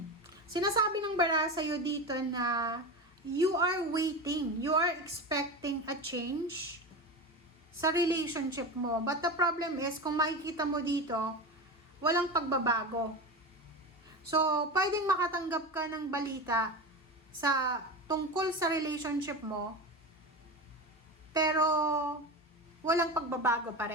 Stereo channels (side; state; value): both; normal; correlation 0.24